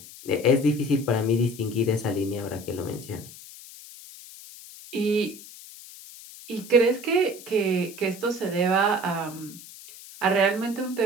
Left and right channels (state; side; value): noise; left; hiss, 17 dB below the sound